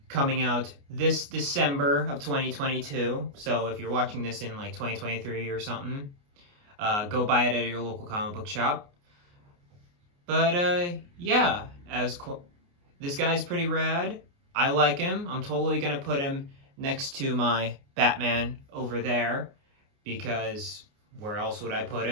coming out this December of 2022. So if you're watching this in like 2023 or something, go buy it at your local comic book shop. But yeah, this guy's pretty rad. I like him. I'm totally going to put him next to my Batman over there, because where else would I put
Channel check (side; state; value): left; late; 29 ms